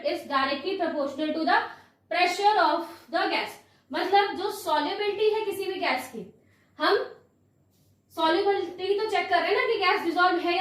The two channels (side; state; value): both; identical; correlation 1.00